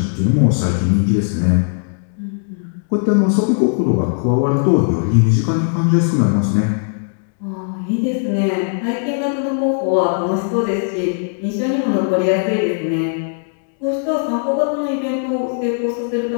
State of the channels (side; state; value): right; silent; digital silence